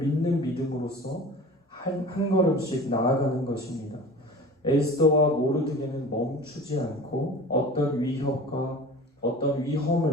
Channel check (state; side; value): normal; both; correlation 0.39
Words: 믿음으로써 한 걸음씩 나아가는 것입니다. 에스더와 모르드게는 멈추지 않고 어떤 위협과 어떤